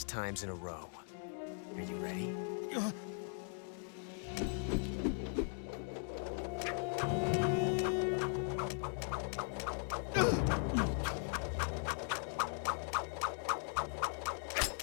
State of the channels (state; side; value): silent; right; 52 dB below the other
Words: times in a row. Are you ready?